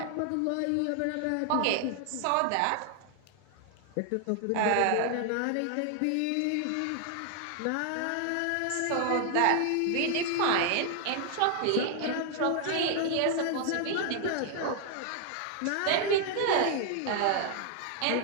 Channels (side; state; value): both; different; correlation 0.00